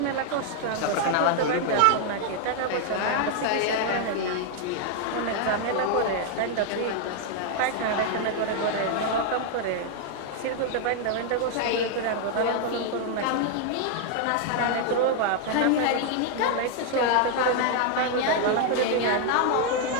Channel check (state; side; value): different; both; correlation 0.00